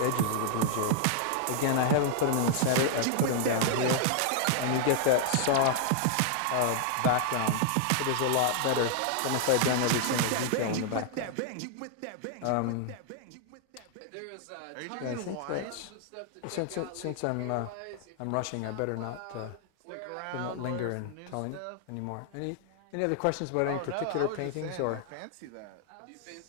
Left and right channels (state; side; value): different; both; correlation -0.01